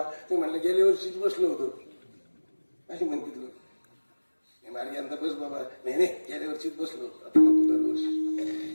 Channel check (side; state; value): both; inverted; correlation -1.00